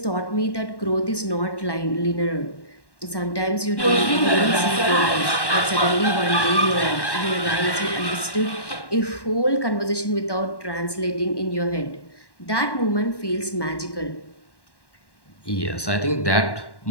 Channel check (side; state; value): right; late; 1.1 ms